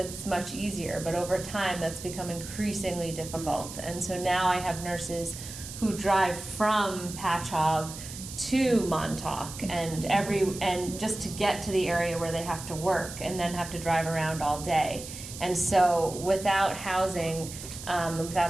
much easier. But over time, that's become increasingly difficult. And so now I have nurses who drive from Patchogue to Montauk and just to get to the area where they have to work and then have to drive around all day. And so without housing,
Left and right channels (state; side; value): noise; right; hiss, 11 dB below the sound